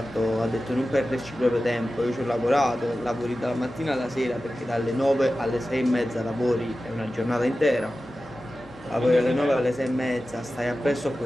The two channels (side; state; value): both; normal; correlation 0.94